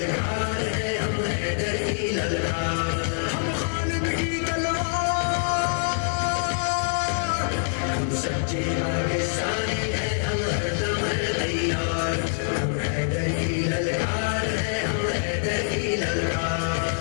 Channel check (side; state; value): right; silent; digital silence